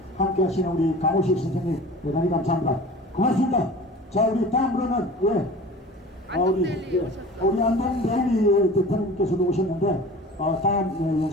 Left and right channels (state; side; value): normal; both; correlation 0.40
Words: 함께 하시는 우리 강호식 선생님 대단히 감사합니다. 고맙습니다. 자, 우리 다음으로는 우리 안동데일리 대표님께서도 오셨는데 다음